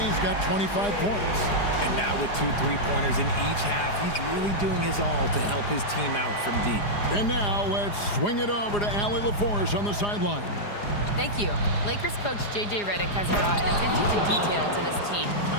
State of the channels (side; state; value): right; late; 4.9 ms